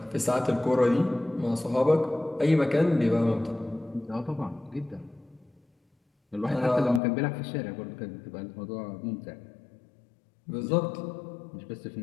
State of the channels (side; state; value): right; drops out; at 7.0 s